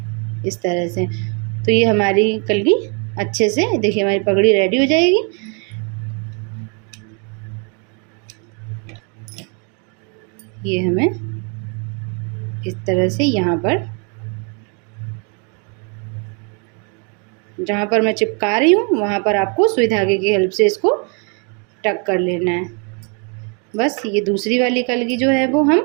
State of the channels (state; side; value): quieter; left; 37.1 dB